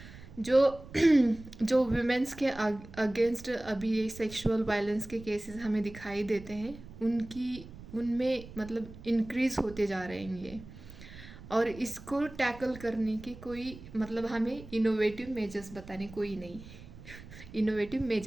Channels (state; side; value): noise; right; rumble, 16 dB below the sound